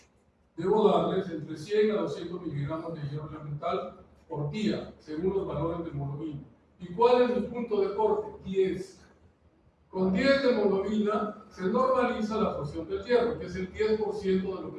debo darles entre 100 a 200 miligramos de hierro elemental por día, según los valores de hemoglobina. ¿Y cuál es mi punto de corte? 10. Con 10 de hemoglobina se normaliza la absorción del hierro, que es el 10% de lo que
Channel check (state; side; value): identical; both; correlation 1.00